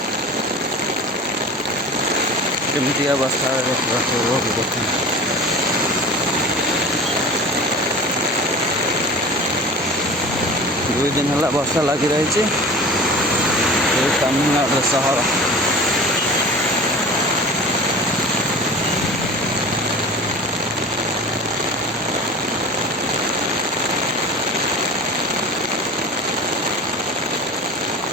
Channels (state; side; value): normal; both; correlation 0.37